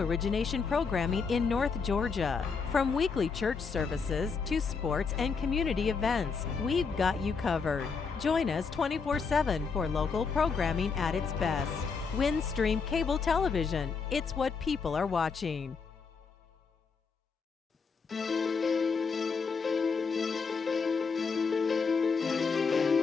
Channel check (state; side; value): quieter; right; 5.2 dB